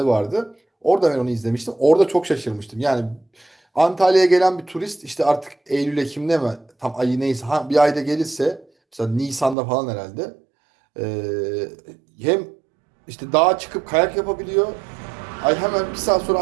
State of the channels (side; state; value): left; drops out; at 9.6 s